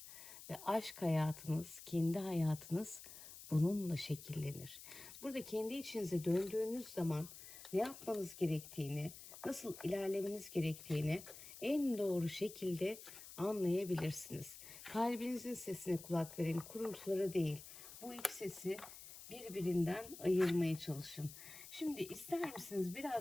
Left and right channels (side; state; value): left; noise; hiss, 14 dB below the sound